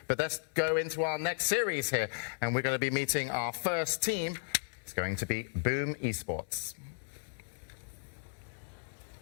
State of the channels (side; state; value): right; silent; digital silence